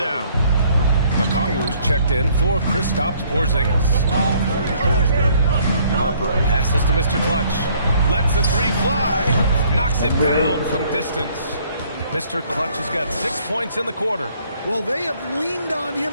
Okongwu's checked in for Kristaps Porzingis. Harper passes to Mr. Clutch. Lets the three fly. Knocks it down from distance. Mr. Clutch has got 6 points in the quarter. Well, they have leaned on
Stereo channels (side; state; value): both; inverted; correlation -0.62